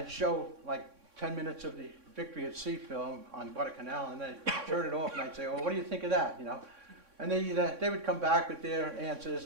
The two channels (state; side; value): late; left; 3.6 ms